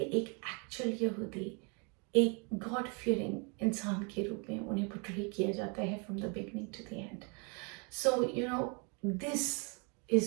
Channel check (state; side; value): quieter; left; 34.0 dB